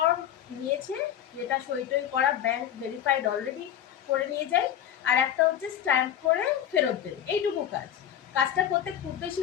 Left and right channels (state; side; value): quieter; right; 10.3 dB